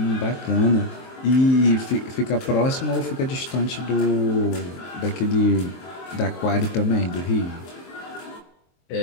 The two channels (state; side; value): late; right; 23 ms